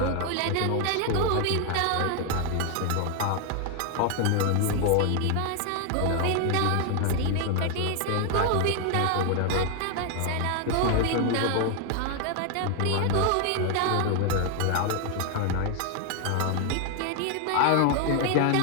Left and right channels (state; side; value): different; both; correlation 0.00